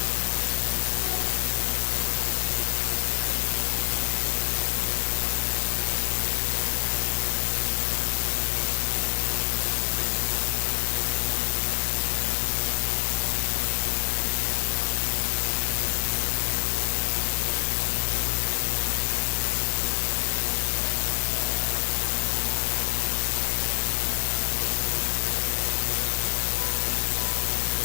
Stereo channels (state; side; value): silent; right; digital silence